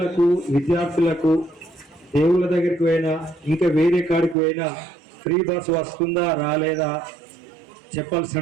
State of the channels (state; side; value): drops out; left; at 4.4 s